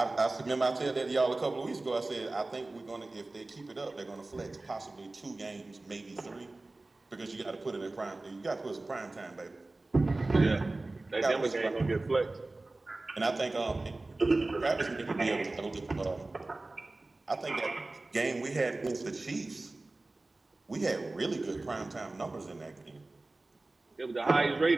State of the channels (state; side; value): quieter; left; 3.1 dB